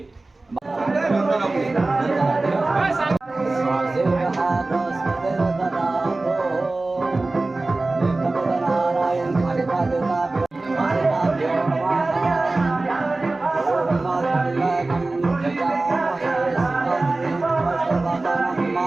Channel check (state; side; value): quieter; left; 3.2 dB